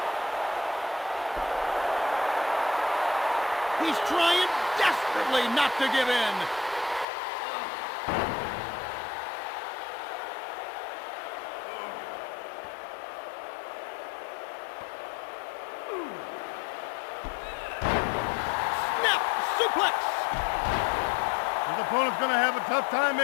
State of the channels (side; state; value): right; drops out; at 7.1 s